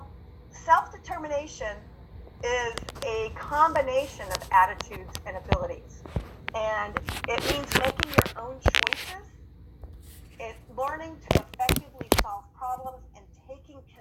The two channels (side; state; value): both; identical; correlation 1.00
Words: self-determination is a combination of attitudes and abilities. And it means making your own choices, learning to effectively solve problems, and taking